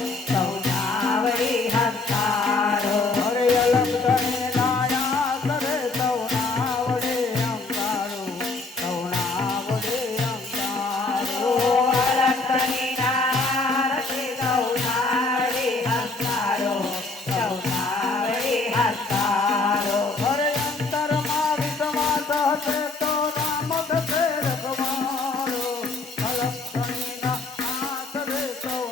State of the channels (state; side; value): quieter; right; 3.6 dB